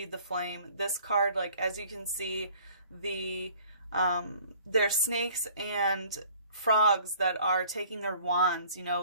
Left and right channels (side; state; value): both; inverted; correlation -0.53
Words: the flame. This card, like, as you can see, there's snakes and frogs that are taking their wands, you